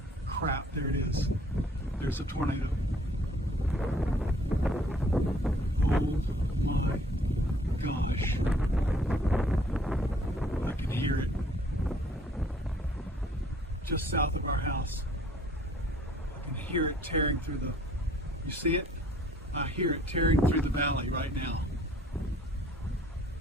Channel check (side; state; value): both; normal; correlation 0.59